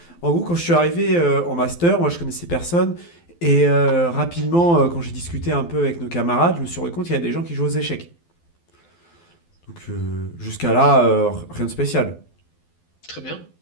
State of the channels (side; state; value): right; late; 12 ms